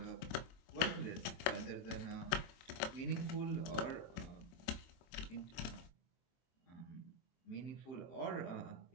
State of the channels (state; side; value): late; right; 23 ms